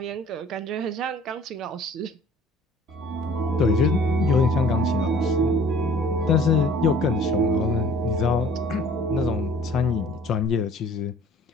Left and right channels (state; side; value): normal; both; correlation 0.52